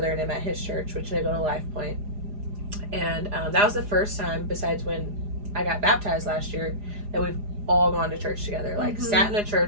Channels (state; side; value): late; left; 4.9 ms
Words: and him at his church, which they go to Life Point. And that was the first time, besides when I got baptized last year, that we've all gone to church together. Like, sat in a